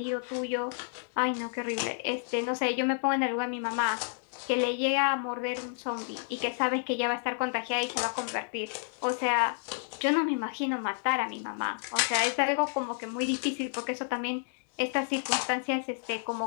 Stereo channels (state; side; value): silent; right; digital silence